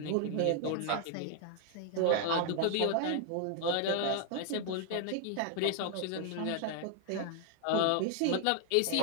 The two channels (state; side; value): different; both; correlation 0.00